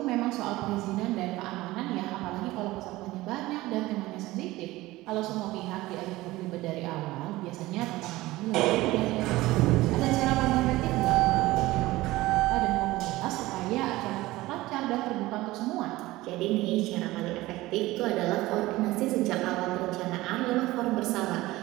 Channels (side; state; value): left; quieter; 18.4 dB